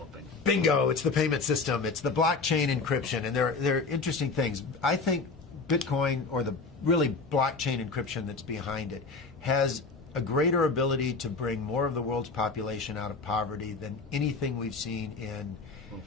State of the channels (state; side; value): quieter; right; 4.2 dB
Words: Bingo, it's the payment system. It's the blockchain encryption, and they're interesting things. I think Bitcoin, or the really blockchain encryption that's behind it, has a greater ability to bring more of the world's population out of poverty than anything we've seen in... Well,